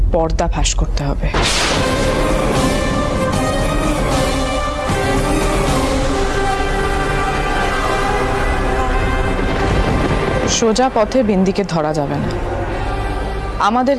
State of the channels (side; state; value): both; identical; correlation 1.00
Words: পর্দা ফাঁস করতে হবে। সোজা পথে বিন্দিকে ধরা যাবে না,